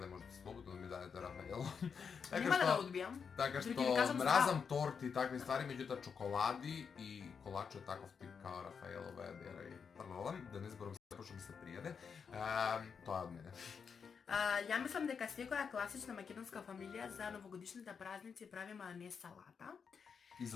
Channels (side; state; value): right; quieter; 6.2 dB